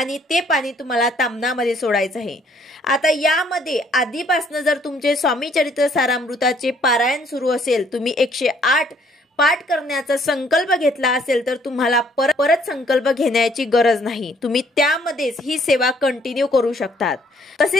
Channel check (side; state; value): both; normal; correlation 0.64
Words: ते पाणी तुम्हाला ताम्हणामध्ये सोडायचं आहे। आता यामध्ये आधीपासून जर तुमचे स्वामी चरित्र सारामृताचे पारायण सुरू असेल, तुम्ही 108 पाठ करण्याचा संकल्प घेतला असेल तर तुम्हाला परत संकल्प घेण्याची गरज नाही, तुम्ही त्यामध्येच ही सेवा कंटिन्यू करू शकतात।